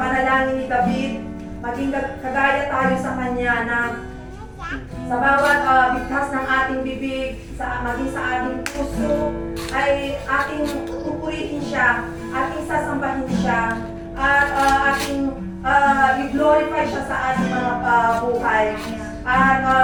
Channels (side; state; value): both; identical; correlation 1.00